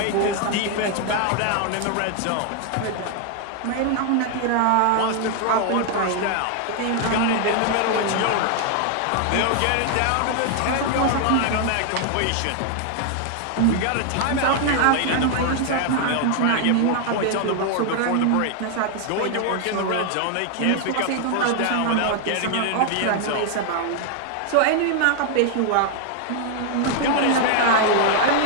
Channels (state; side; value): different; both; correlation 0.00